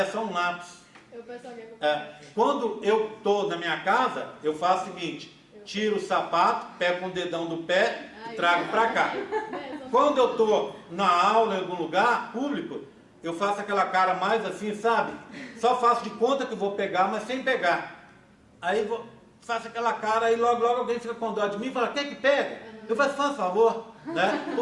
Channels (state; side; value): identical; both; correlation 1.00